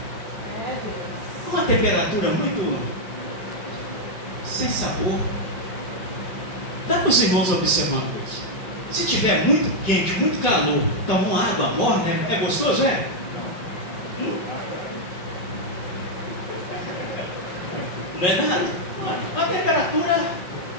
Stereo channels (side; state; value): right; late; 5.2 ms